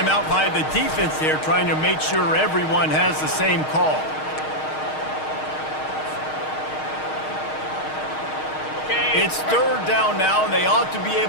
by the defense there, trying to make sure everyone has the same call. It's third down now, and they ought to be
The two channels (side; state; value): right; late; 6.4 ms